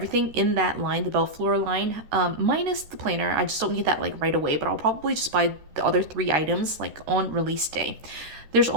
in that line, the Fleur line, minus the planner. I just don't need that like right away, but I'll probably just buy the other 3 items like on release day. There's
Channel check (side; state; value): left; late; 13 ms